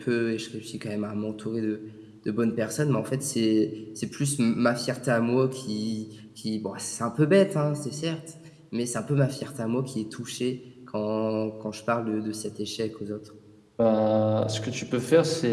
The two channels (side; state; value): both; identical; correlation 1.00